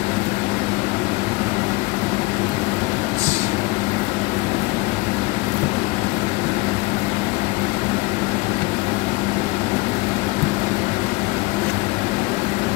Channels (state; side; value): quieter; right; 23.0 dB